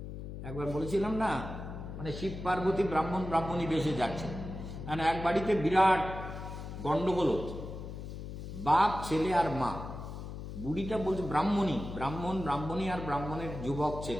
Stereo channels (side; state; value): left; noise; hum, 9 dB below the sound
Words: একবার বলেছিলাম না, মানে শিব পার্বতী ব্রাহ্মণী বেশে যাচ্ছে, মানে এক বাড়িতে বিরাট গন্ডগোল হচ্ছে, বাপ, ছেলে আর মা। বুড়িটা বলছে, ব্রাহ্মণী আর ব্রাহ্মণের যুবক